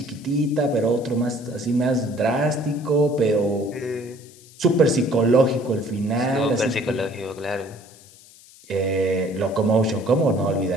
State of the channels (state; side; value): noise; left; hiss, 24 dB below the sound